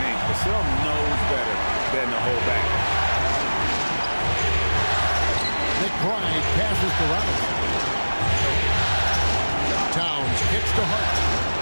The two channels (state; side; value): inverted; both; correlation -1.00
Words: Vassell knows better than to hold back. McBride passes to Robinson. Towns kicks to Hart.